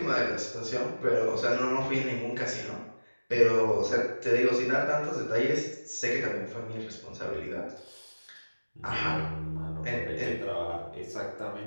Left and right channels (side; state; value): both; inverted; correlation -1.00